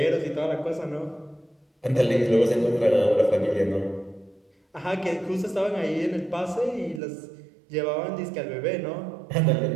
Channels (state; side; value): drops out; left; at 7.0 s